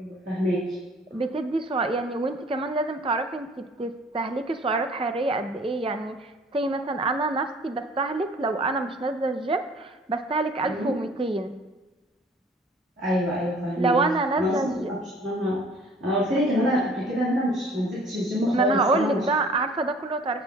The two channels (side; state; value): both; normal; correlation 0.52